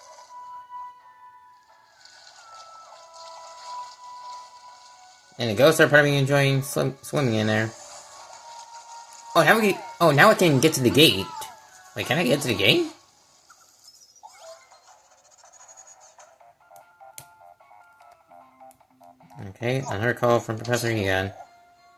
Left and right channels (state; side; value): identical; both; correlation 1.00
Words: And the ghosts are probably enjoying swimming in there. Oh, now I can get to the gate. Wait, can I get to the gate? Okay, another call from Professor Egon.